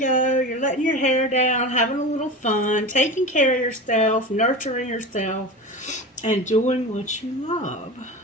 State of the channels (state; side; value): normal; both; correlation 0.29